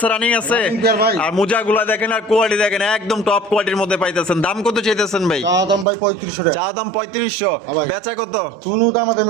রানিং আছে, আর মোজাগুলা দেখেন আর কোয়ালিটি দেখেন একদম টপ কোয়ালিটির মধ্যে পাইতেছেন। দাম কত চাইতেছেন ভাই? চা দাম ভাই 3500 টাকা। চা দাম 3500, বেচা কত? কোনো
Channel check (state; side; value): drops out; left; at 5.9 s